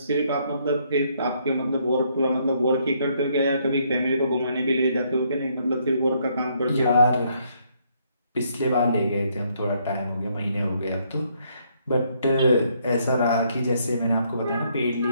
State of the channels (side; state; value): both; inverted; correlation -0.70